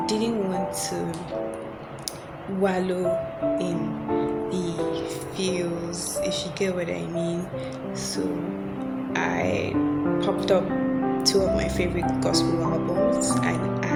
didn't want to wallow in the feels, if you get what I mean. So I popped up two of my favorite gospel albums, and I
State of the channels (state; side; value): identical; both; correlation 1.00